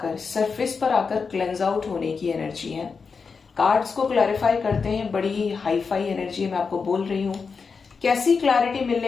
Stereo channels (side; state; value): right; quieter; 5.2 dB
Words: सरफेस पर आकर क्लेंज आउट होने की एनर्जी है। कार्ड्स को क्लैरिफाई करते हैं, बड़ी ही हाई फाई एनर्जी मैं आपको बोल रही हूं। कैसी क्लैरिटी